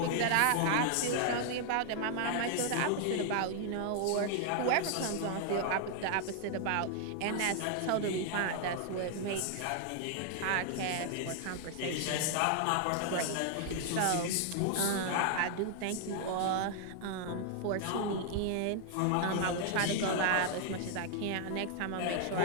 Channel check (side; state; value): both; different; correlation 0.00